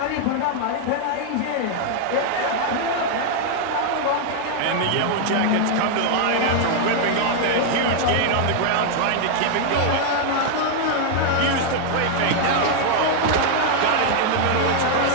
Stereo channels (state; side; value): different; both; correlation 0.00